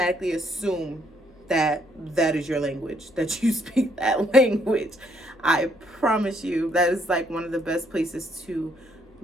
assume that that is your language, that you speak that language. I promise you, that is like one of the best places to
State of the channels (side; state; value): left; noise; hum, 30 dB below the sound